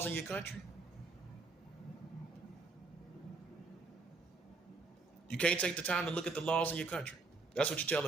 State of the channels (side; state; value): left; quieter; 4.0 dB